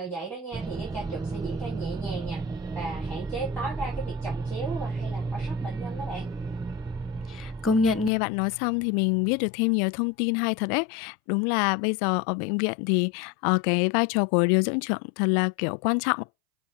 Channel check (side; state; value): right; drops out; at 8.1 s